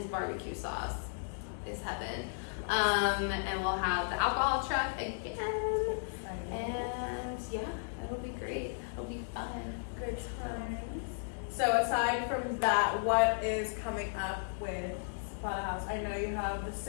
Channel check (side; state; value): right; silent; digital silence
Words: barbecue sauce is heaven. And we'll have the alcohol truck again. And yeah, it'll be great. It'll be fun. Good times. So aside from that, what is coming up with Zapata House? I know you have the